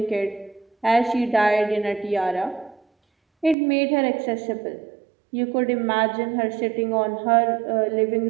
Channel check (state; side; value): drops out; left; at 3.6 s